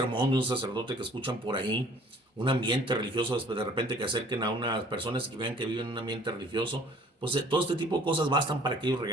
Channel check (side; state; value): both; normal; correlation 0.54